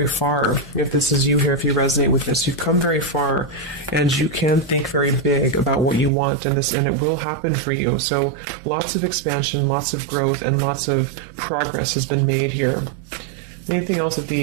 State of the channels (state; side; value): drops out; left; at 6.1 s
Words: far. If this is you here, if you resonate with this, you've come very far, and you can think very big about what you want, and it will happen for you. So lots of expansion, lots of growth, and lots of progress has been made here. Anything else that